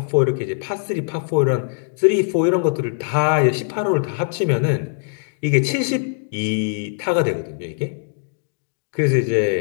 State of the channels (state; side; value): silent; right; digital silence